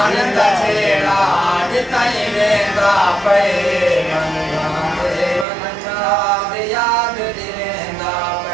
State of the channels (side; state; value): left; drops out; at 5.5 s